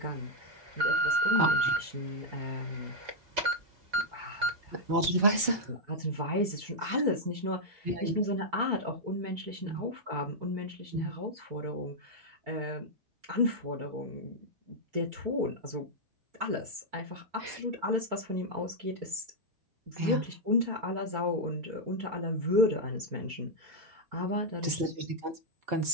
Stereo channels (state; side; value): late; left; 4.5 ms